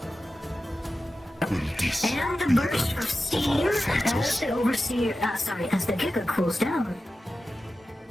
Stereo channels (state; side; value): normal; both; correlation 0.93